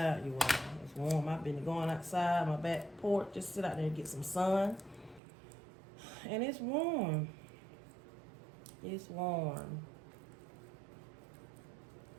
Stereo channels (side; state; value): left; drops out; at 5.2 s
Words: you all. It's warm. I've been going outside my back porch, just sit out there and get some sun. And it's warm. It's warm.